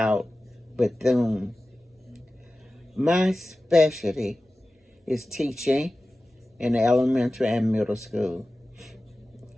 Bethune. My specialty is teaching in elementary and middle school.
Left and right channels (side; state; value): both; normal; correlation 0.95